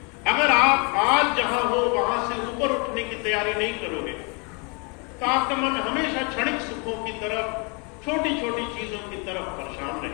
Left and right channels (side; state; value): right; quieter; 32.1 dB